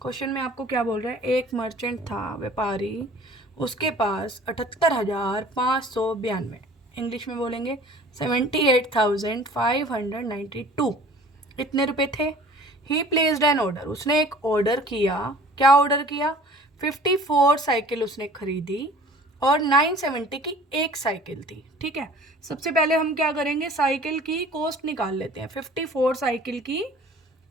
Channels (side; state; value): both; normal; correlation 0.48